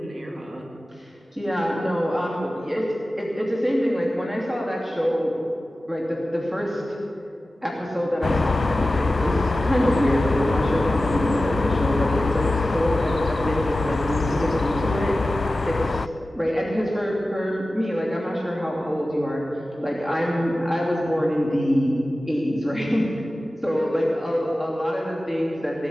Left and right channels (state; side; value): normal; both; correlation 0.95